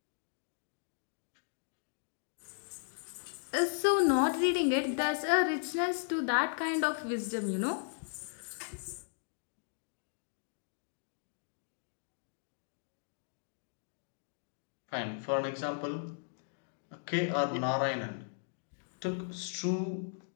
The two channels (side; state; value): right; silent; digital silence